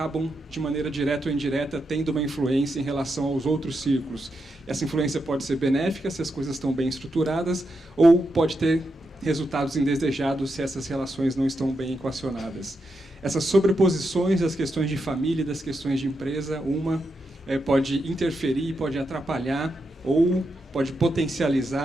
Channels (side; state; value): both; normal; correlation 0.85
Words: de maneira direta ou indireta, tendo uma influência em relação aos outros círculos. Essa influência pode ser benéfica se as coisas estão bem estruturadas, ou pode ter resultados indesejados se essas relações não estão bem equacionadas. Essas sobreposições das questões de família e das questões de empresa, pode interferir, pode atrapalhar ou pode